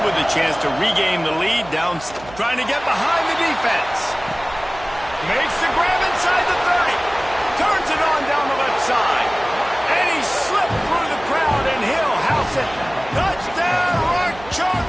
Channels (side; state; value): right; noise; hum, 18 dB below the sound